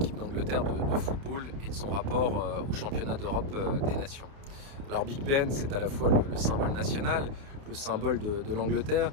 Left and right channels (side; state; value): left; late; 29 ms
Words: d'Angleterre de football et de son rapport au championnat d'Europe des nations. Alors Big Ben, c'est à la fois le symbole national, le symbole de l'Angleterre,